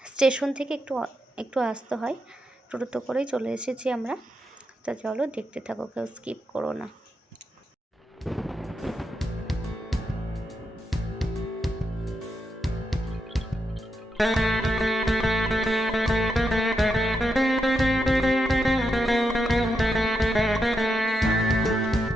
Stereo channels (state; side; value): normal; both; correlation 0.83